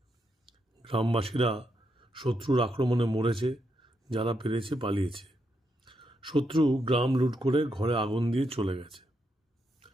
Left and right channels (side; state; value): both; normal; correlation 0.81